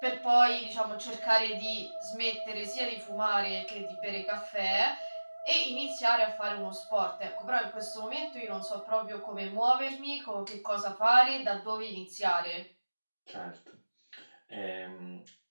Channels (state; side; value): inverted; both; correlation -1.00